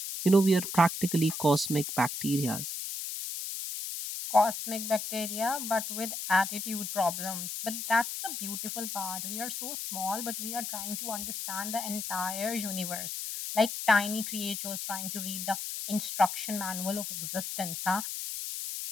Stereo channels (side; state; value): left; noise; hiss, 5 dB below the sound